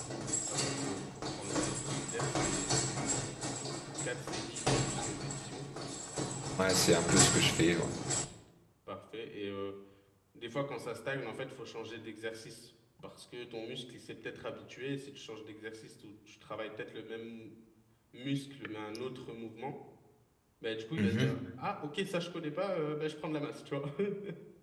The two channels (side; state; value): both; identical; correlation 1.00